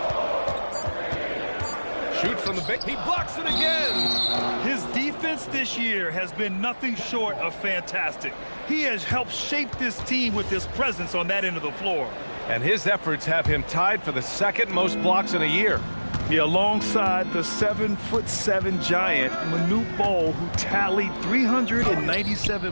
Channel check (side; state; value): both; inverted; correlation -1.00